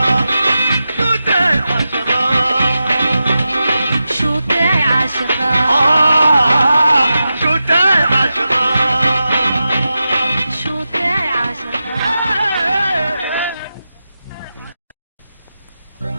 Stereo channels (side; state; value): both; inverted; correlation -0.91